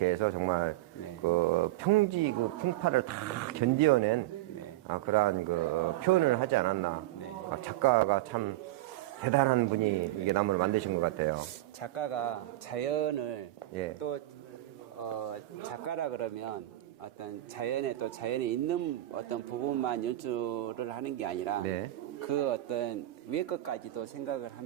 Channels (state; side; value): quieter; left; 16.0 dB